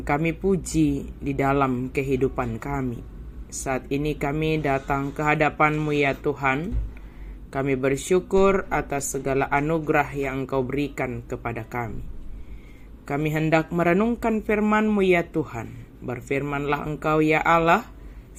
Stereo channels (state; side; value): identical; both; correlation 1.00